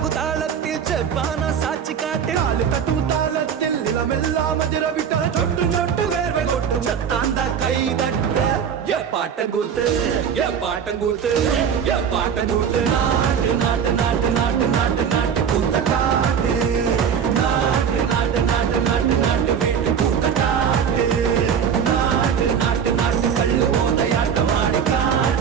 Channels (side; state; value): left; quieter; 7.6 dB